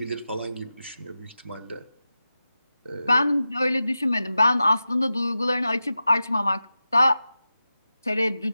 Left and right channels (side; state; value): both; inverted; correlation -0.93